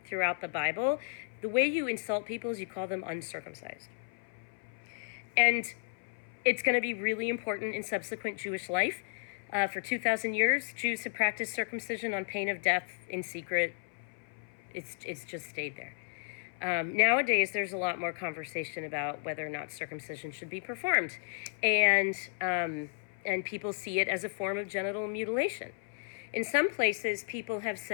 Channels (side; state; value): right; silent; 55 dB below the other